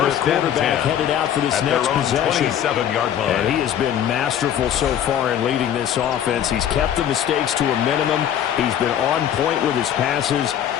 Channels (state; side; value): quieter; right; 10.0 dB